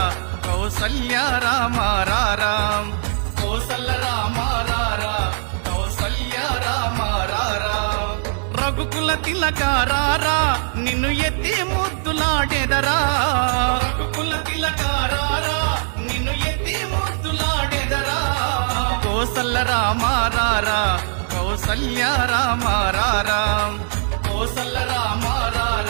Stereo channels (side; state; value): left; silent; 64 dB below the other